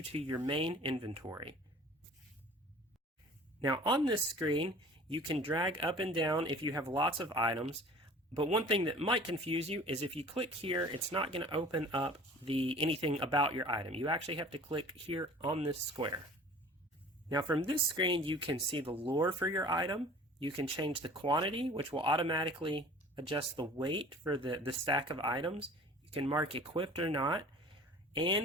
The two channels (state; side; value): normal; both; correlation 0.45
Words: to your main inventory. Now on this screen, you can drag up and down if you have lots of items, but one thing that might confuse you is if you click here, it's not going to open up anything about your item. You actually have to click here on this square. Now from this screen, you can see the lore for your item. You can change the quantity, which will automatically adjust the weight for the stack of items. You can mark equipped or not,